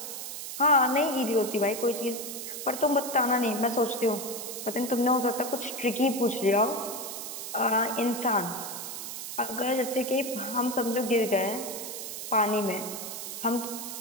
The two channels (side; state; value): right; noise; hiss, 7 dB below the sound